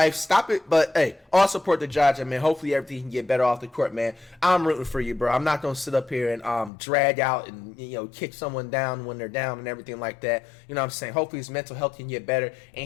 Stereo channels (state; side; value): drops out; right; at 6.7 s